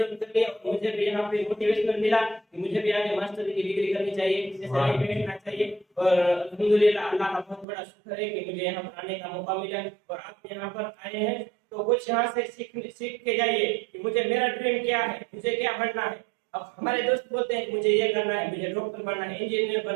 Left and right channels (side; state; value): left; drops out; at 7.7 s